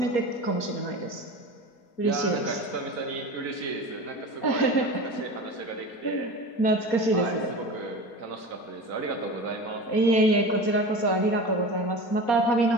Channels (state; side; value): late; right; 4.2 ms